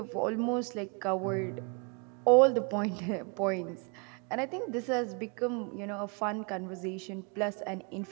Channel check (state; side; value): quieter; left; 33.9 dB